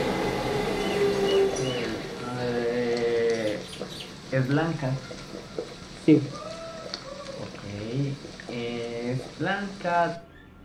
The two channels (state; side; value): identical; both; correlation 1.00